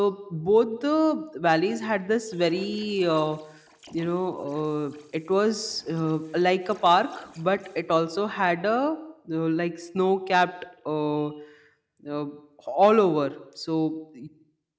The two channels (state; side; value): identical; both; correlation 1.00